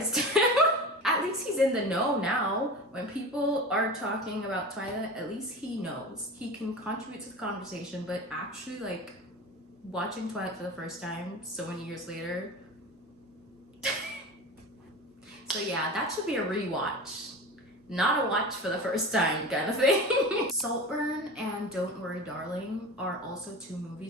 him. At least he's in the know now. When people are talking about Twilight, at least he knows. He can contribute to the conversation, but actually, like, watching Twilight for the first time so many years later. So yeah, that should be a rewatch. Not a watch for the first time kind of thing. Saltburn and Don't Worry Darling are also two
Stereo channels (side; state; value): both; normal; correlation 0.31